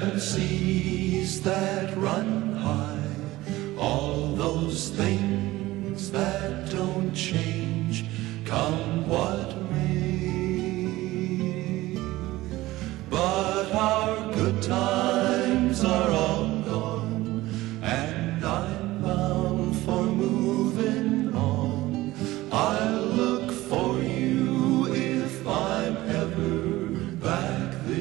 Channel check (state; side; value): quieter; left; 17.8 dB